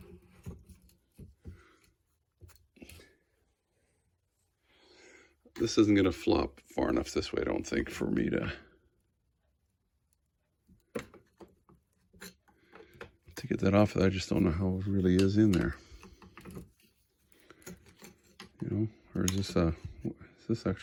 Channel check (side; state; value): both; identical; correlation 1.00